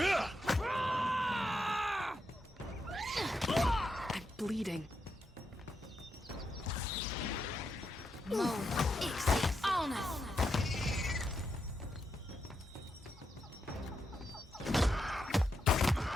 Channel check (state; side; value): normal; both; correlation 0.83